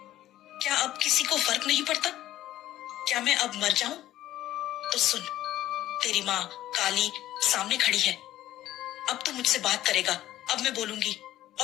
क्या अब किसी को फर्क नहीं पड़ता? क्या मैं अब मर जाऊं? तो सुन, तेरी माँ काली सामने खड़ी है। अब तू मुझसे बात करेगा, अब मैं बोलूंगी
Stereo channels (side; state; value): right; quieter; 13.8 dB